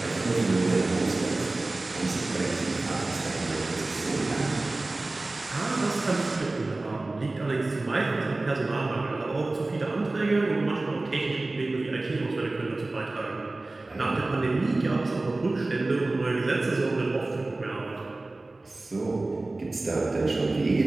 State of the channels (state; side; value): quieter; left; 3.0 dB